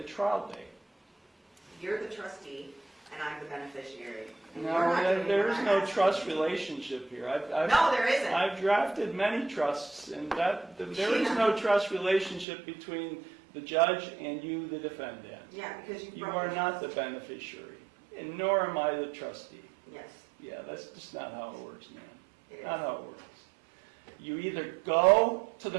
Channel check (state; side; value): drops out; left; at 12.5 s